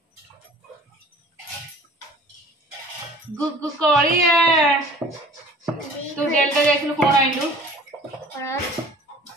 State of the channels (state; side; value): normal; both; correlation 0.47